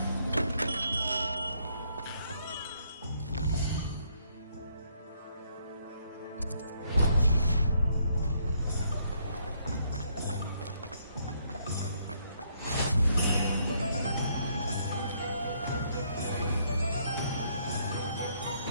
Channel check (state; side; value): inverted; both; correlation -0.71